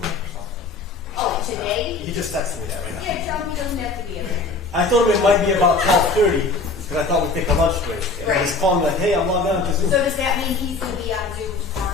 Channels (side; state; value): right; quieter; 3.9 dB